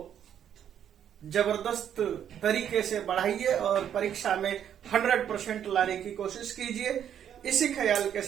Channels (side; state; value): left; quieter; 9.4 dB